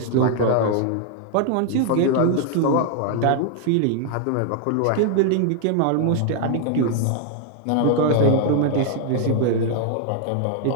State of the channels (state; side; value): different; both; correlation 0.00